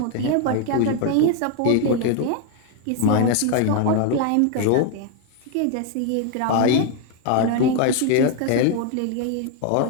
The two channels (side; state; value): both; different; correlation 0.01